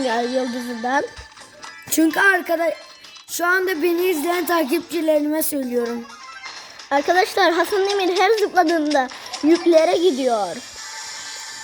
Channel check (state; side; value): identical; both; correlation 1.00